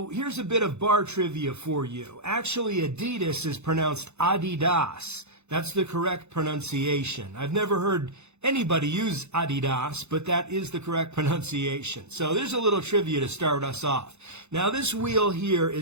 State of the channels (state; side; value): late; left; 0.81 ms